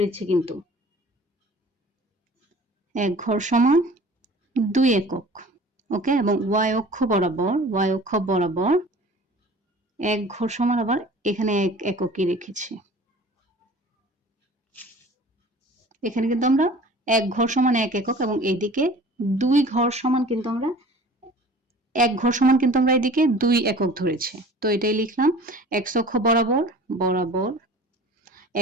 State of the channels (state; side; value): normal; both; correlation 0.45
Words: কিন্তু এক ঘর সমান 2 একক। ওকে, এবং ওয়াই অক্ষ বরাবর এক ঘর সমান আবার এখানে এক এককই রেখেছি। এখানে কিন্তু আমরা এক ঘর সমান এক একক, এবং এদিকে 2 ঘর সমান কিন্তু আমরা এক ঘর সমান কিন্তু আমরা এদিকে 2 একক ধরেছি। তো এটাই লিখলাম, এক্স অক্ষ বরাবর